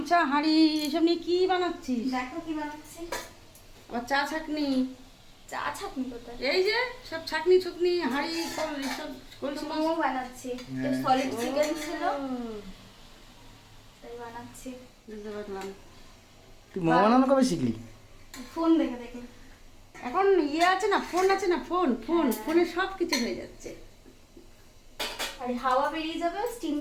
হাঁড়ি এসব নিয়ে কি বানাচ্ছিস? দেখো কি বানাচ্ছি। আবার চা ছাকনি। চা ছাকনি কোথায়? এই যে সব ছাকনি ছুকনি হাঁড়ি সব এসব কলসি মোমো বানাচ্ছি। সলিড চিকেন ছিল তাই বানাচ্ছি। বুঝতে পারলাম। তুই মোমো বানানো কবে শিখলি? ফোন দেখে দেখে। এখন আছে না, ফোন আছে না, ফোনে সব কিছু হয়ে যাচ্ছে। আর হাওয়া বেরিয়ে যাবে,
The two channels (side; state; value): both; identical; correlation 1.00